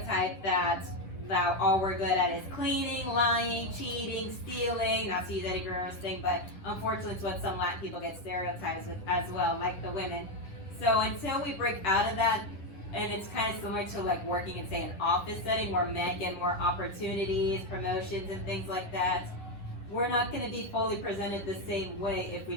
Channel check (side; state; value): right; late; 10 ms